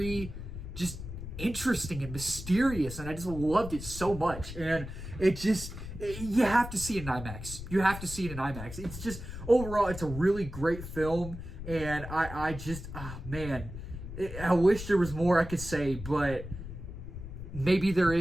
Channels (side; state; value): left; noise; rumble, 10 dB below the sound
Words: interesting and mysterious, and I just loved it so much. And you have to see it in IMAX. You have to see it in IMAX. Overall, it's a really great film. And I wish there was more I could say, but maybe there